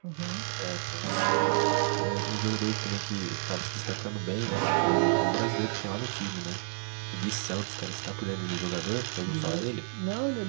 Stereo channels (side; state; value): left; silent; digital silence